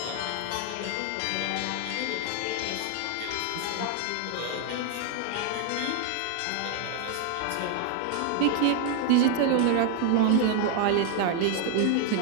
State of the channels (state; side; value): different; both; correlation 0.00